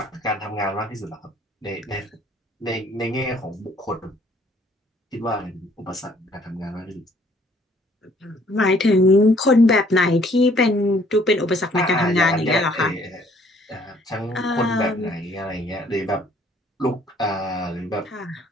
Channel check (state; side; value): normal; both; correlation 0.61